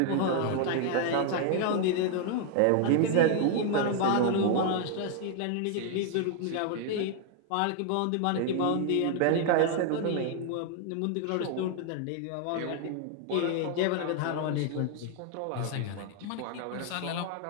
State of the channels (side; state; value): both; different; correlation 0.00